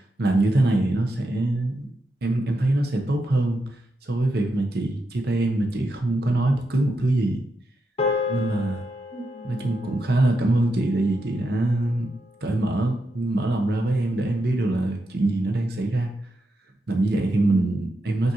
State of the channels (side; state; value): both; normal; correlation 0.85